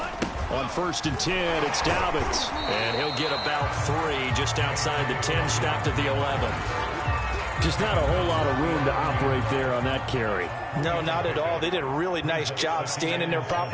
On 1st and 10, it's Dobbins. And he'll get about 3 just outside the 10, stopped at the 11. Just not a whole lot of room to operate there on that carry. No, not at all. They did a really nice job staying in their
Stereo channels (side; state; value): both; identical; correlation 1.00